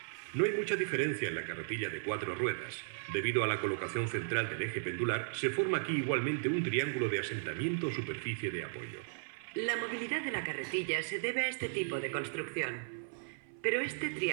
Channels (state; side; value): silent; left; 54 dB below the other